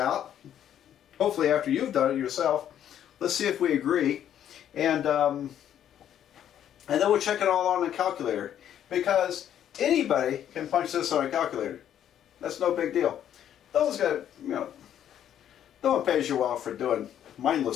hopefully after you've done it yourself. Let's see if we agree. And then we'll check it all on a calculator, because anybody can punch this on a calculator. That's no big deal. No one pays you well for doing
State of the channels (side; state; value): right; quieter; 10.3 dB